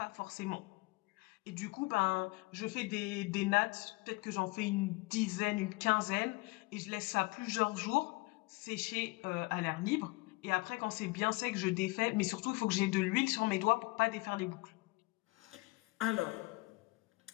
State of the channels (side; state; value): right; quieter; 24.6 dB